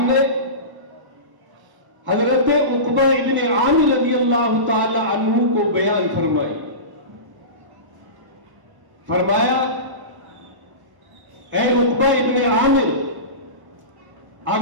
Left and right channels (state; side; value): late; left; 1.0 ms